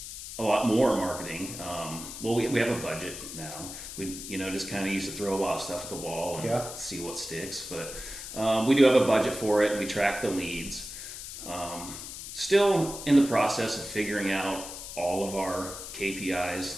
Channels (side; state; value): left; noise; hiss, 10 dB below the sound